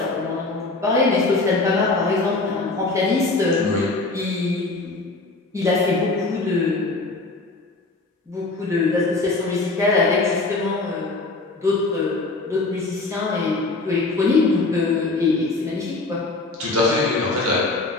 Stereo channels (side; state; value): right; quieter; 3.4 dB